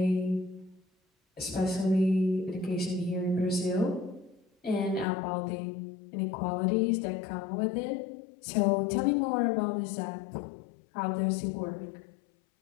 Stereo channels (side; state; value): right; drops out; at 5.1 s